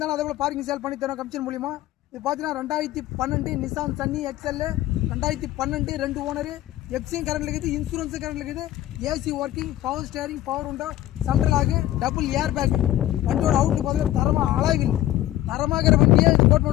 அதே போல பார்க்கிங் சேல் பண்ணி தரோம் கமிஷன் மூலியமா. இது பார்த்தீங்கன்னா 2012 Nissan Sunny XL 2012 2 owner FC current இருக்குது, இன்சூரன்ஸ் கரண்ட் இருக்குது, AC working, power steering, power window, central ஆகு, டபுள் ஏர் பேக். வண்டியோட அவுட்லுக் பார்த்தீங்கன்னா தரமா அழகில் தரமாகிற வண்டியே இது கோட்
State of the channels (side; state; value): right; quieter; 14.2 dB